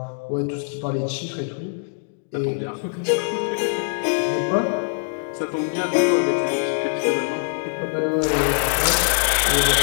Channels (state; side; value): silent; right; 64 dB below the other